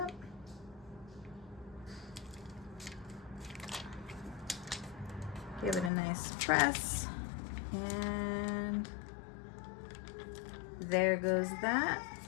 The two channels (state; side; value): drops out; right; at 5.9 s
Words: Give it a nice press. And there goes that.